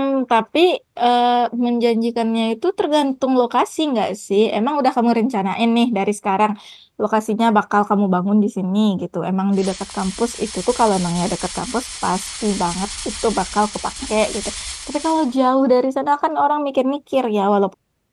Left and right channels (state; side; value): identical; both; correlation 1.00